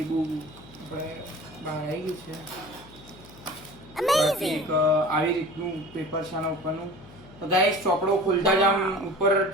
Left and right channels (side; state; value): left; noise; hum, 21 dB below the sound